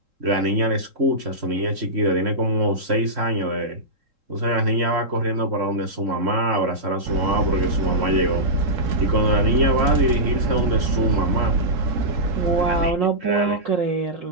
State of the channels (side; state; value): left; late; 3.7 ms